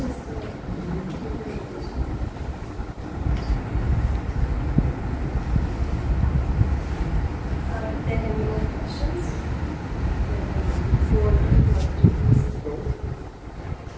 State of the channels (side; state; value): both; identical; correlation 1.00